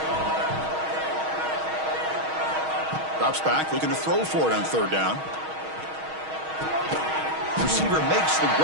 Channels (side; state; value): left; late; 6.3 ms